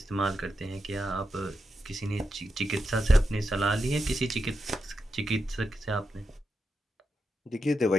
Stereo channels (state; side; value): normal; both; correlation 0.87